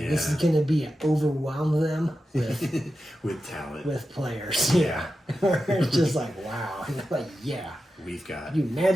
this is going to be overwhelm them with with talent, with players. Yeah, it's just like wow, like we've got. Can you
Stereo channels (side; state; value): both; normal; correlation 0.91